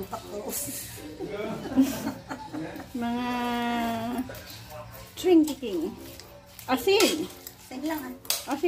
mga trinkiking. Asin. Asin lang.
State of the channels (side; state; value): both; identical; correlation 1.00